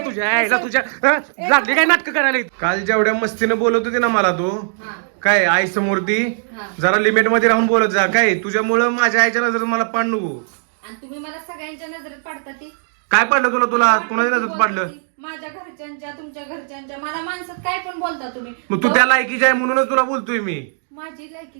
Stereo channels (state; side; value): silent; left; digital silence